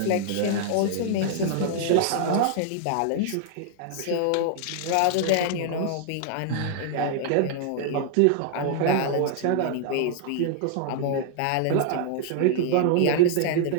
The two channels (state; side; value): different; both; correlation 0.00